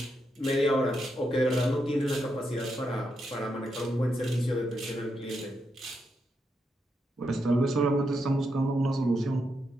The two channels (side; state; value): both; normal; correlation 0.83